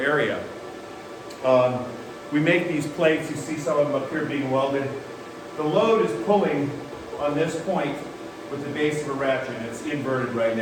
We make these plates, you see some of them up here being welded. The load is pulling on this point with the base of a ratchet. It's inverted right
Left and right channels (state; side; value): identical; both; correlation 1.00